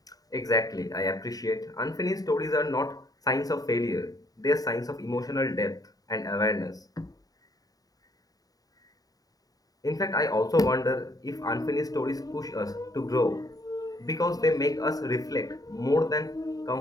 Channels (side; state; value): right; late; 0.18 ms